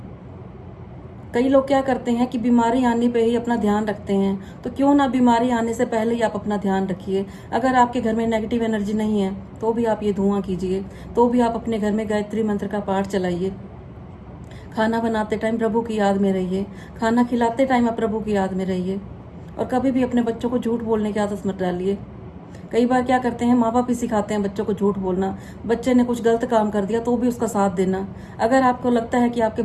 कई लोग क्या करते हैं कि बीमारी आने पे ही अपना ध्यान रखते हैं, तो क्यों ना बीमारी आने से पहले ही आप अपना ध्यान रखिए। अगर आपके घर में नेगेटिव एनर्जी नहीं है तो भी आप ये धुआं कीजिए, तो भी आप अपने घर में गायत्री मंत्र का पाठ चलाइए। खाना बनाते टाइम प्रभु की याद में रहिए, खाना खिलाते टाइम आप प्रभु की याद में रहिए। और कभी भी अपने बच्चों को झूठ बोलने की आदत मत डालिए। कई बार क्या करते हैं, माँ बाप ही सिखाते हैं बच्चों को झूठ बोलना। बच्चे ने कुछ गलत काम कर दिया तो भी उसका साथ देना। अगर आपको लगता है कि आपके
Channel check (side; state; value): both; identical; correlation 1.00